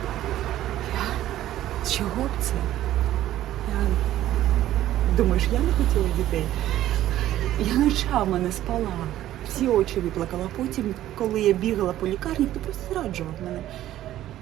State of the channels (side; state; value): left; quieter; 13.4 dB